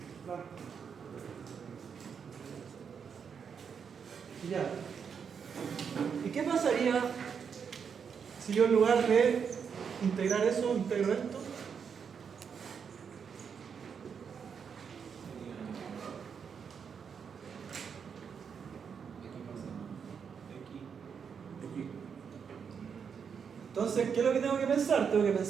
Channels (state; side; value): quieter; left; 6.7 dB